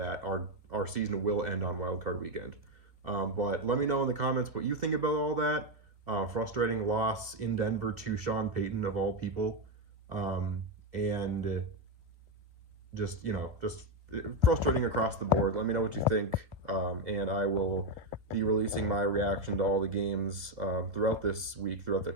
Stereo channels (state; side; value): late; left; 2.2 ms